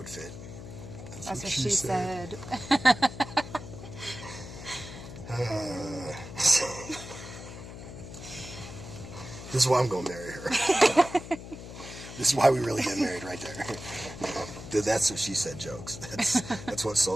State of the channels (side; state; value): left; noise; hum, 12 dB below the sound